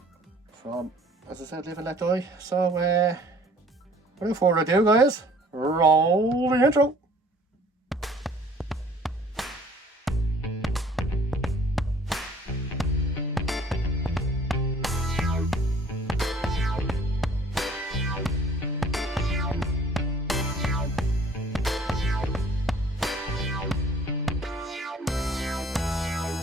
from, as I said, Live and Let Die. So without further ado, guys, roll the intro.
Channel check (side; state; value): both; normal; correlation 0.54